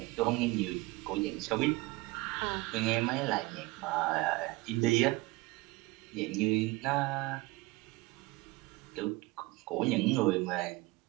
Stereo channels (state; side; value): quieter; left; 22.0 dB